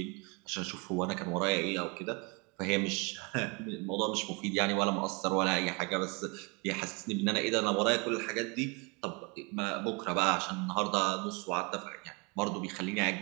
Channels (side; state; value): left; quieter; 30.3 dB